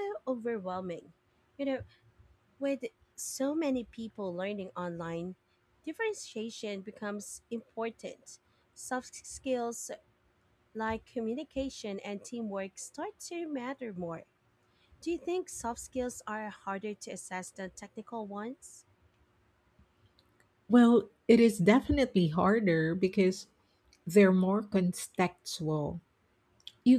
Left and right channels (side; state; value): both; identical; correlation 1.00